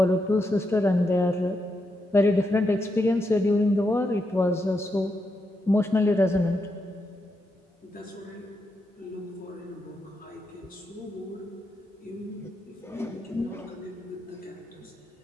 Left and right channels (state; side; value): normal; both; correlation 0.83